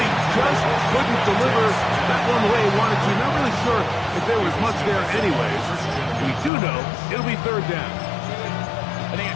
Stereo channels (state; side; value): drops out; right; at 6.5 s